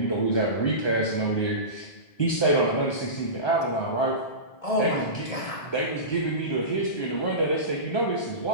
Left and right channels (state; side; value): late; right; 1.2 ms